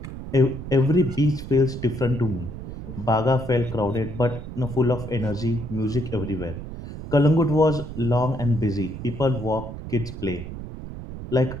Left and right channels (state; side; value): noise; right; rumble, 10 dB below the sound